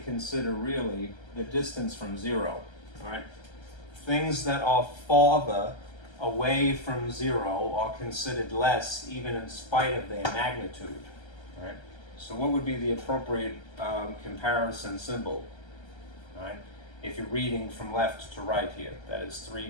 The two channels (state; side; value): late; right; 1.3 ms